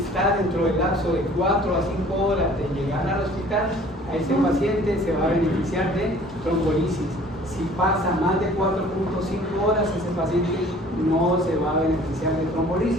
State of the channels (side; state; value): both; normal; correlation 0.51